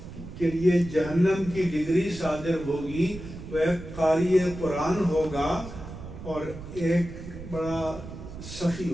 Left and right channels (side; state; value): right; noise; rumble, 12 dB below the sound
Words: کے لیے جہنم کی ڈگری صادر ہوگی وہ ایک قاری قرآن ہوگا اور ایک بڑا سخی